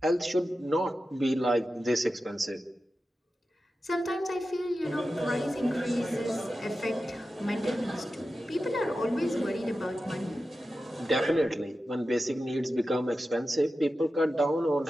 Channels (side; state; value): both; normal; correlation 0.92